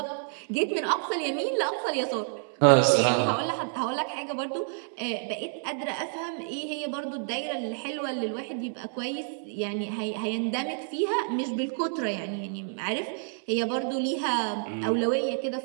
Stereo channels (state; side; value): silent; left; 59 dB below the other